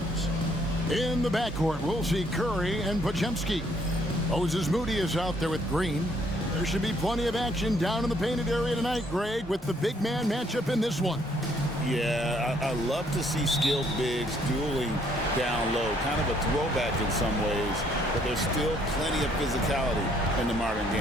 in the backcourt, we'll see Curry and Podziemski. Moses Moody is out there with Green. There should be plenty of action down in the painted area tonight, Greg, with the big man matchup in this one. Yeah, I love to see skilled bigs dueling down low. Kind of a throwback in some ways, but there's still plenty of physicality in the modern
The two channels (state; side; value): normal; both; correlation 0.66